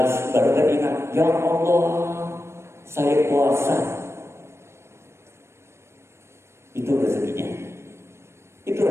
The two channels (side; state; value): left; late; 0.13 ms